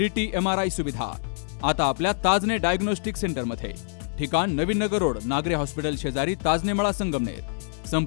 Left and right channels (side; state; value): right; silent; digital silence